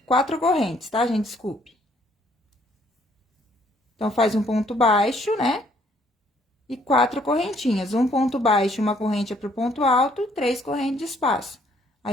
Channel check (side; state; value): both; normal; correlation 0.64